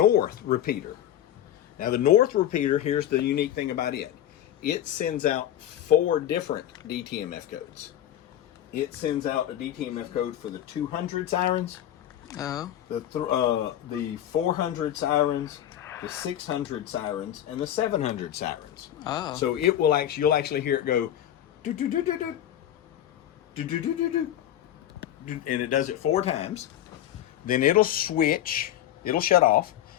repeater. Now, the north repeater, here's the unique thing about it. It sends out 4 different DTMF codes. It sends out a DTMF code for the 200 sirens, the 400 sirens, the 600 sirens, and the 700 sirens. Oh. So it will you'll actually hear it go, do do do do do, do do do do do, and it does it 4 times. Then it'll switch, it'll shut off,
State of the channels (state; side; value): quieter; right; 11.7 dB